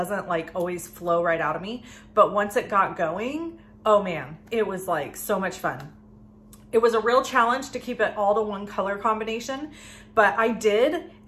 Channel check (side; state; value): both; identical; correlation 1.00